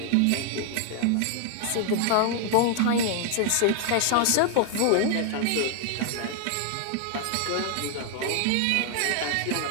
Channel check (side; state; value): both; different; correlation 0.00